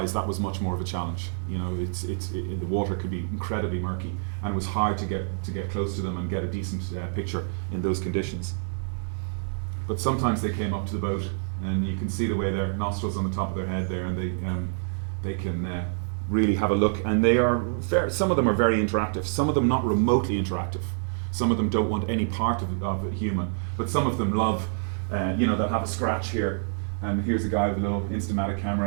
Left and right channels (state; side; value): silent; left; digital silence